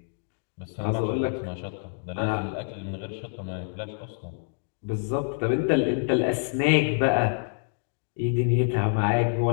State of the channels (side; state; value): right; silent; digital silence